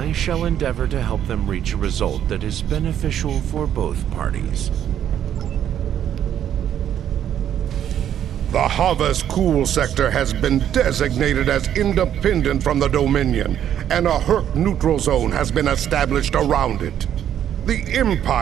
shall endeavor to help them reach a result that is beneficial for both parties. The Havas Cool sector has been designated as independent from the Dominion, and a Herc neutral zone has been established around it. The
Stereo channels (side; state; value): left; quieter; 10.1 dB